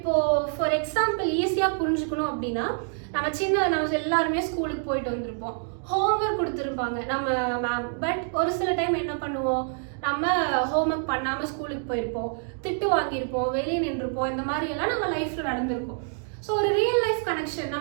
ஃபார் எக்ஸாம்பிள் ஈஸியாக புரிஞ்சுக்கணும் அப்படின்னா, நம்ம எல்லாருமே ஸ்கூலுக்கு போயிட்டு வந்திருப்போம், ஹோம்ஒர்க் கொடுத்துருப்பாங்க நம்ம மேம். பட் ஒரு சில டைம் என்ன பண்ணுவோம், நம்ம ஹோம்ஒர்க் பண்ணாமல் ஸ்கூலுக்கு போயிருப்போம், திட்டு வாங்கியிருப்போம், வெளியே நின்றுருப்போம். இந்த மாதிரி எல்லாம் நம்ம லைஃப்பில் நடந்திருக்கும். ஸோ ஒரு ரியல் லைஃப் கனெக்ஷன்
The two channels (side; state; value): left; silent; 59 dB below the other